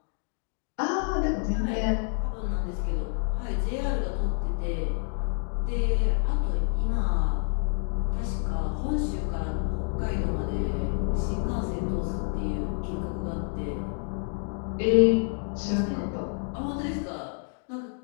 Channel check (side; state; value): right; silent; 57 dB below the other